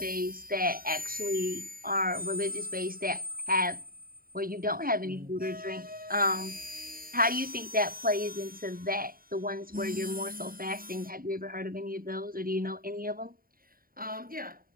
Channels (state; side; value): late; left; 0.42 ms